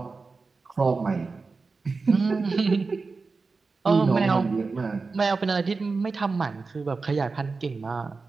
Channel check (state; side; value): quieter; left; 4.2 dB